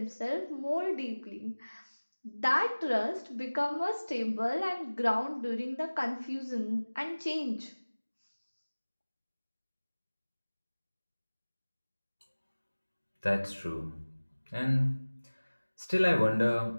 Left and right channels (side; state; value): both; inverted; correlation -1.00